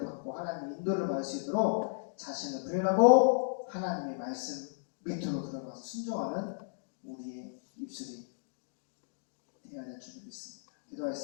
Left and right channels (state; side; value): silent; right; digital silence